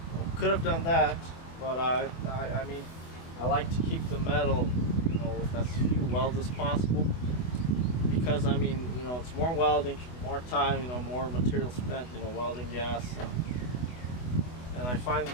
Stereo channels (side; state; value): right; late; 24 ms